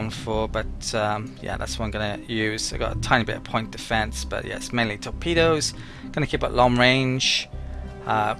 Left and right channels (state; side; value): identical; both; correlation 1.00